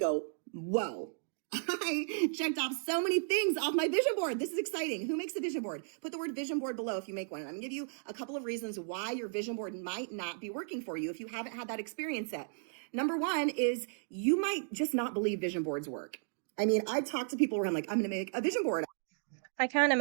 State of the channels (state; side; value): silent; left; digital silence